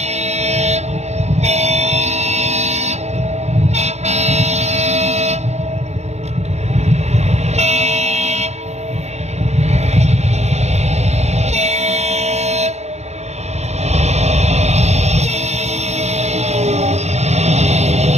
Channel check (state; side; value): late; left; 0.32 ms